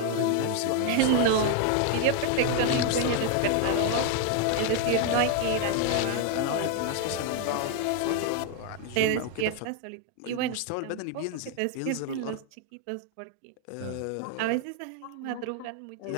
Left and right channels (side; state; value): both; different; correlation 0.00